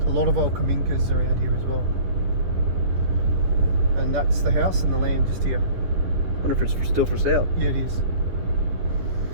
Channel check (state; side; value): late; left; 10 ms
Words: A lot of old kaminkas around here as well. And that's the house and the land just here. I wonder if it's still for sale. Yeah, it is.